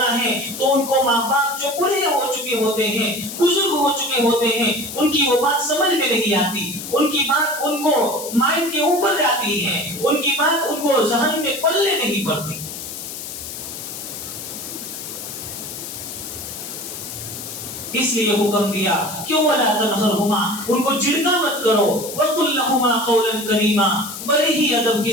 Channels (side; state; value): left; noise; hiss, 9 dB below the sound